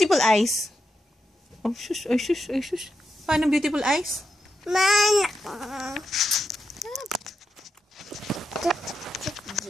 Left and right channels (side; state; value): both; normal; correlation 0.85